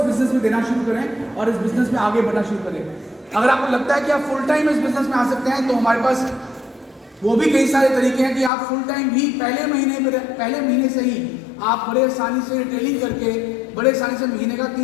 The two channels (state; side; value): drops out; right; at 8.5 s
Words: बिजनेस में देना शुरू करें और इस बिजनेस में आगे बढ़ना शुरू करें। अगर आपको लगता है कि आप फुल टाइम इस बिजनेस में आ सकते हैं, तो हमारे पास वो भी कई सारे तरीके हैं कि आप फुल टाइम भी पहले महीने से ही आप बड़े आसानी से रिटेलिंग करके बड़े आसानी से महीने का